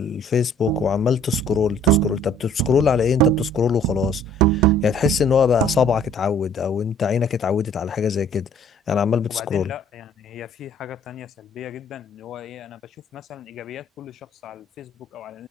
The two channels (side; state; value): both; normal; correlation 0.56